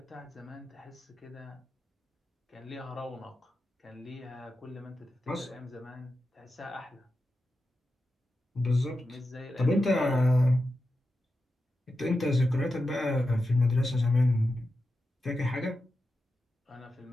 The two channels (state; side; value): normal; both; correlation 0.90